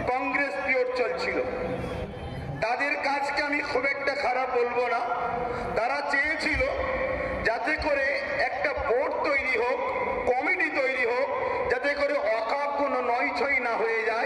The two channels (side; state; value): both; identical; correlation 1.00